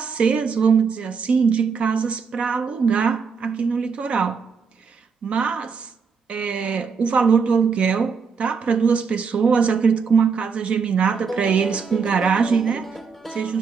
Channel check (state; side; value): quieter; left; 5.7 dB